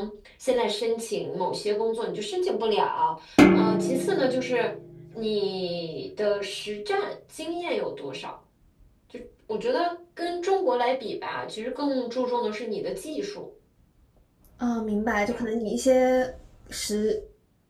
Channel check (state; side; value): identical; both; correlation 1.00